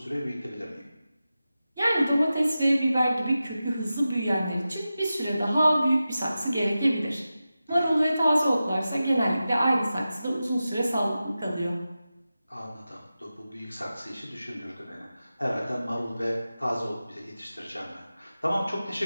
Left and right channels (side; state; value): both; inverted; correlation -0.93